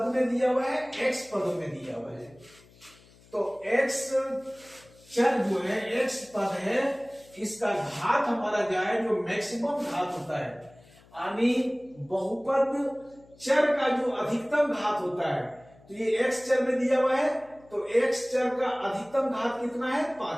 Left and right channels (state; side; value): noise; left; hum, 26 dB below the sound